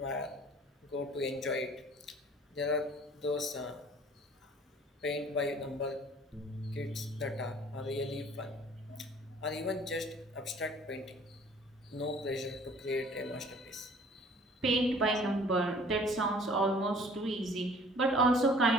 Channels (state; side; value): normal; both; correlation 0.52